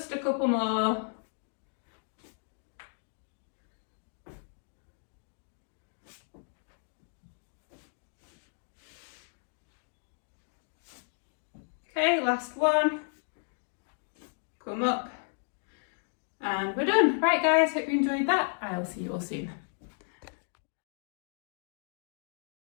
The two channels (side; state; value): right; silent; 55 dB below the other